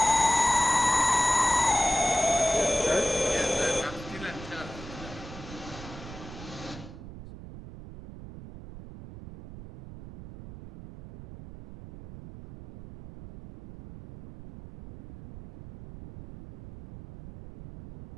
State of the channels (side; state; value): right; noise; rumble, 14 dB below the sound